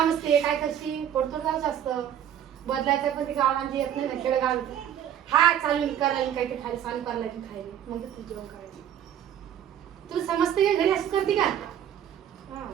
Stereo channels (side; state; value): left; quieter; 9.9 dB